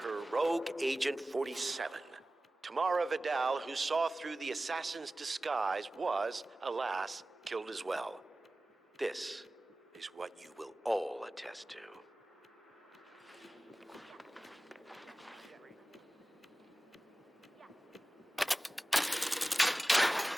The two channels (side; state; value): both; normal; correlation 0.97